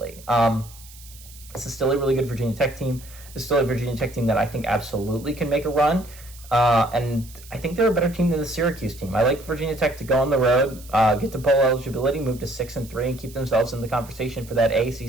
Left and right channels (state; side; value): noise; right; hiss, 20 dB below the sound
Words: This is still a really good Virginia Tech team. It's still a Virginia Tech team that I think absolutely can make a run. And I think they're a better team than the Syracuse team. I like Virginia Tech to go on the road, get to bowl eligibility, move to 6-3, and keep themselves in the conversation for that